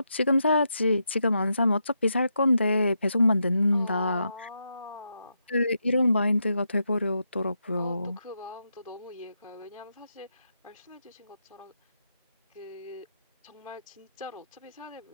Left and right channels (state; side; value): inverted; both; correlation -0.83